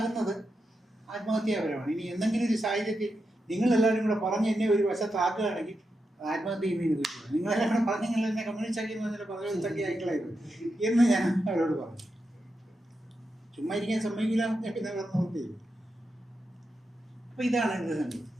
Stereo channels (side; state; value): both; normal; correlation 0.87